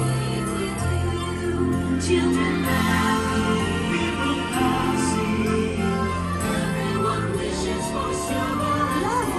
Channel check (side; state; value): both; identical; correlation 1.00